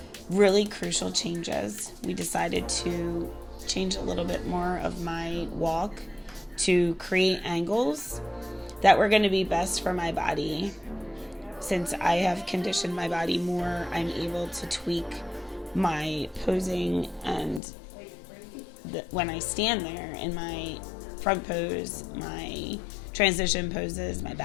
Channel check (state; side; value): drops out; right; at 17.6 s